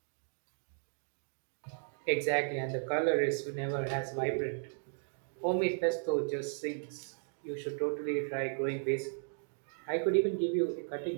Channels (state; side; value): silent; left; digital silence